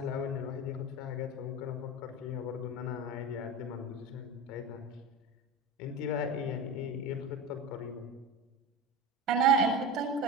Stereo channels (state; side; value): normal; both; correlation 0.25